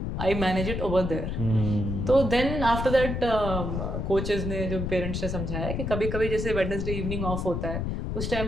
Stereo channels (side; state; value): left; noise; rumble, 3 dB below the sound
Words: I manage it over there। तो then after that coaches ने, जो पेरेंट्स ने समझाया कि कभी कभी जैसे वेडनेसडे इवनिंग ऑफ होता है, उस टाइम